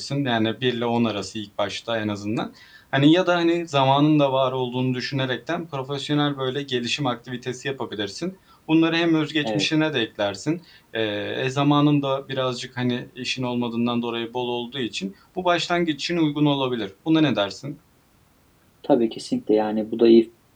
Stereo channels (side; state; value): both; identical; correlation 1.00